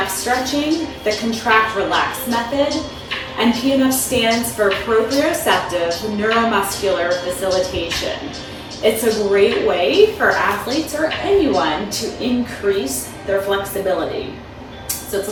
stretching, the contract relax method, and PNF stands for Proprioceptive Neuromuscular Facilitation. It's a great way for athletes or anyone to increase their flexibility. So it's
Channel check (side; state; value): both; identical; correlation 1.00